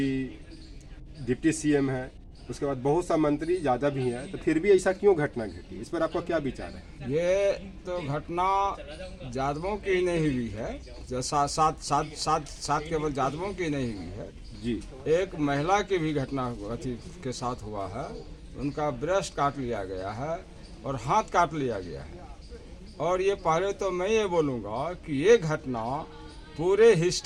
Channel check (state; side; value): identical; both; correlation 1.00